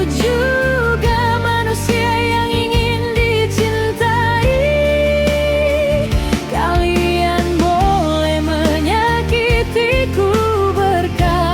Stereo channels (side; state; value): both; identical; correlation 1.00